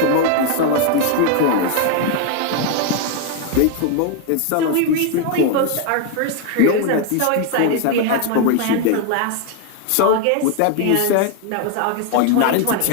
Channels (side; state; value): both; different; correlation 0.01